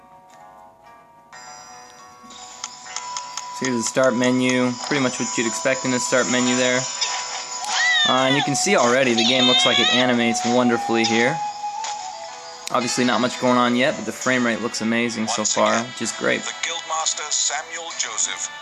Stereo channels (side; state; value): both; identical; correlation 1.00